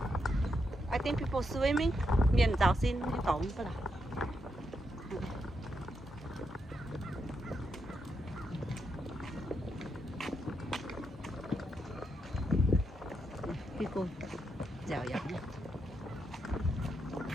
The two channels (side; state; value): both; normal; correlation 0.82